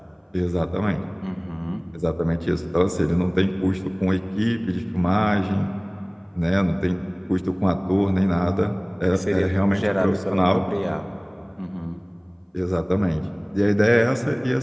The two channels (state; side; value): identical; both; correlation 1.00